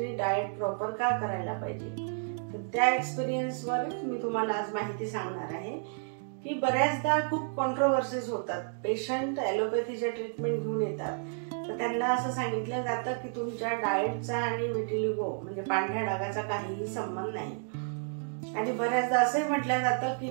डाएट प्रॉपर का करायला पाहिजे, तर त्या एक्सपिरियन्सवर मी तुम्हाला आज माहिती सांगणार आहे की बऱ्याचदा खूप कॉन्ट्रोवर्सीज होतात. पेशंट ॲलोपॅथीच्या ट्रीटमेंट घेऊन येतात तर त्यांना असं सांगितलं जातं की तुमच्या डाएटचा आणि व्हिटिलिगो म्हणजे पांढऱ्या डागाचा काहीही संबंध नाही. आणि बऱ्याचदा असंही म्हटलं जातं की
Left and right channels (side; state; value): left; silent; digital silence